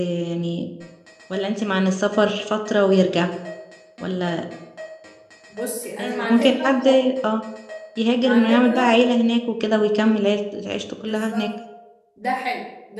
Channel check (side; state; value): both; identical; correlation 1.00